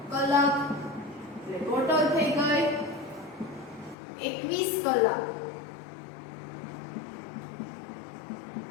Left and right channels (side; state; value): right; drops out; at 4.0 s